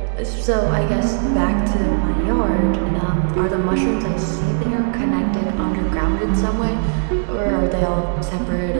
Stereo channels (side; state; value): left; silent; digital silence